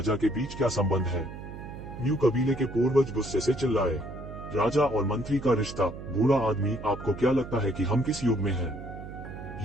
के बीच क्या संबंध है? म्यू कबीले के पूर्वज गुस्से से चिल्लाए। राजा और मंत्री का रिश्ता। बूढ़ा आदमी, आपको क्या लगता है कि हम किस युग में हैं?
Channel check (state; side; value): noise; right; hum, 11 dB below the sound